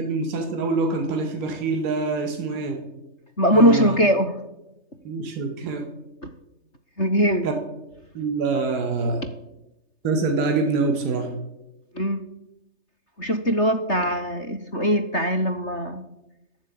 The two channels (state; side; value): late; right; 3.3 ms